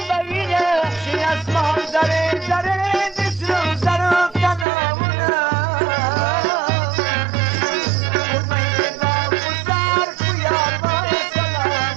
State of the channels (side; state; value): left; drops out; at 4.7 s